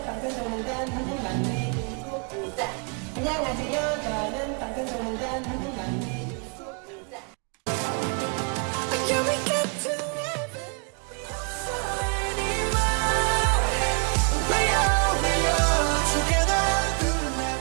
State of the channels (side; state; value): left; quieter; 37.2 dB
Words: 당근종단 한국만리 중국자. 안녕하세요. 저는 당근종단 한국만리 중국자.